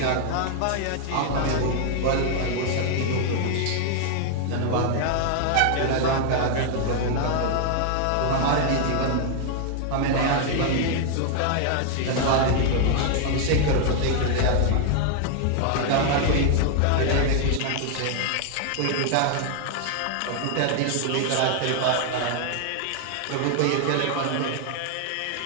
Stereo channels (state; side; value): different; both; correlation 0.00